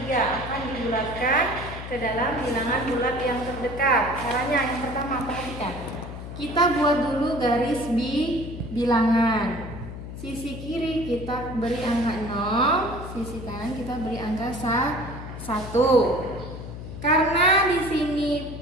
akan dibulatkan ke dalam bilangan bulat yang terdekat. Caranya yang pertama, perhatikan. Kita buat dulu garis bilangan. Sisi kiri kita beri angka 0, sisi kanan kita beri angka 1. Karena di sini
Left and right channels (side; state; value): left; noise; hum, 10 dB below the sound